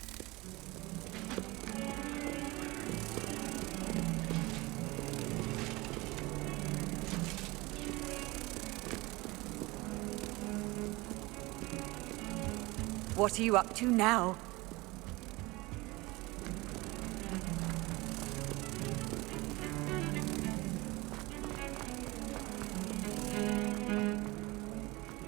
What are you up to now?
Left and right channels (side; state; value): left; quieter; 22.4 dB